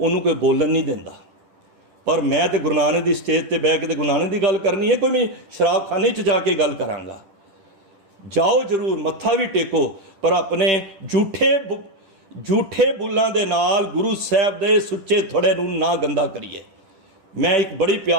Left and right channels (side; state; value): left; late; 10 ms